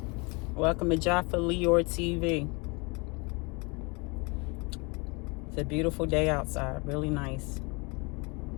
Welcome to Jaffa Leor TV. It's a beautiful day outside, really nice.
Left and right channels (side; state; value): right; quieter; 29.5 dB